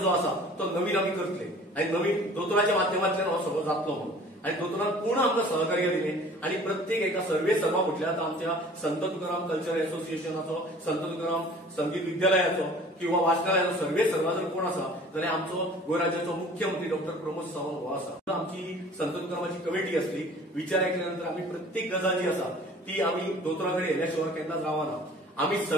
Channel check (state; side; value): normal; both; correlation 0.48